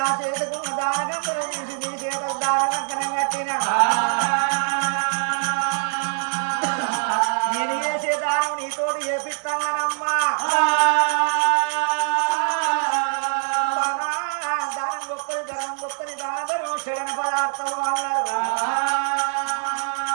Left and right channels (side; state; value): left; silent; 61 dB below the other